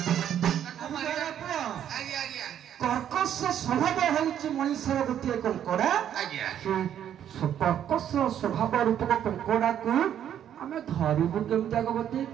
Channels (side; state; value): left; quieter; 10.0 dB